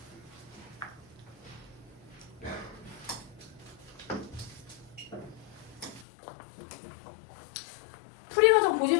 풀이 과정 보지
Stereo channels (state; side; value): drops out; right; at 6.1 s